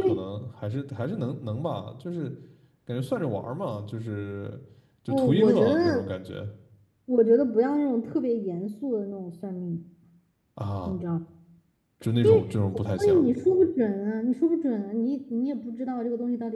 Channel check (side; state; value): both; identical; correlation 1.00